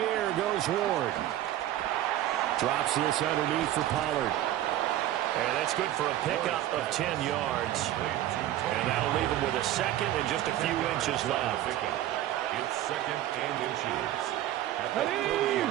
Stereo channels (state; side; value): quieter; left; 13.4 dB